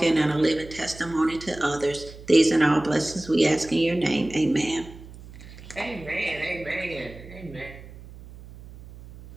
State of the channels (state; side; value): noise; right; hum, 17 dB below the sound